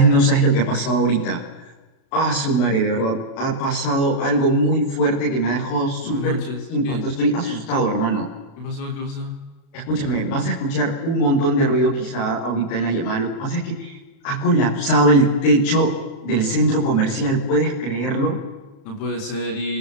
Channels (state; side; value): late; right; 36 ms